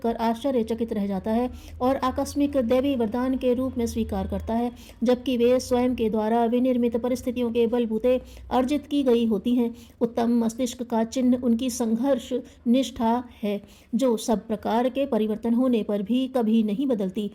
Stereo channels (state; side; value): identical; both; correlation 1.00